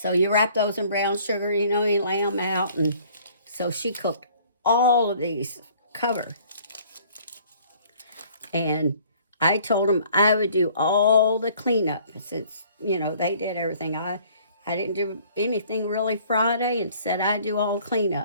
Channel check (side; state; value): both; inverted; correlation -0.56